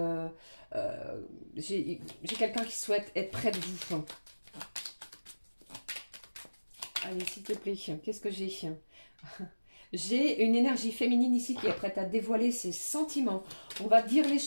j'ai quelqu'un qui souhaite être près de vous. Allez, s'il te plaît, qu'est-ce que j'ai? J'ai une énergie féminine ici qui est prête à dévoiler ses sentiments. On va dire les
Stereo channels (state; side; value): inverted; both; correlation -1.00